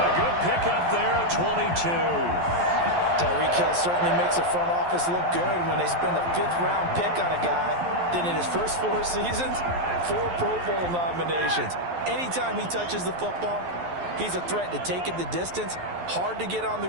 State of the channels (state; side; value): late; left; 11 ms